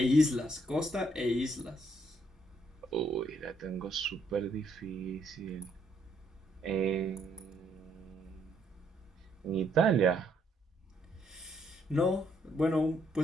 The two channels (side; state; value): both; normal; correlation 0.71